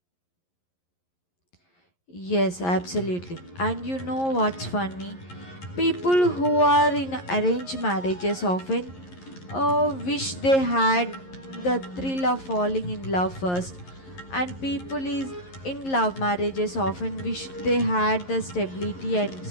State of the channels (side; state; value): right; late; 11 ms